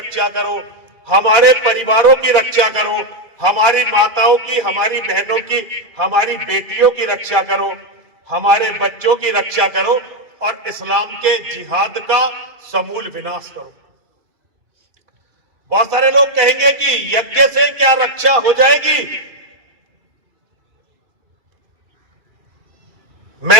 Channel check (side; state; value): left; late; 2.9 ms